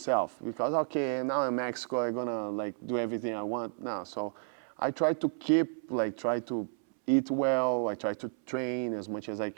because okay, now in Mexico, I'm gonna like do everything I want now. So I try to try to eat well. I try to train as much as I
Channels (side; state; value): left; silent; 57 dB below the other